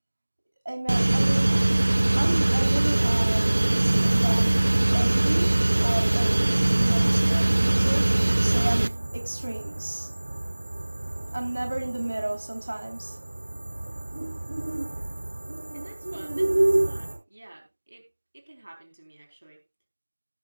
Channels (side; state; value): both; inverted; correlation -1.00